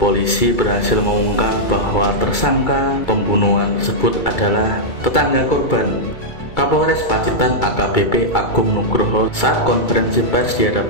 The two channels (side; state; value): right; late; 2.3 ms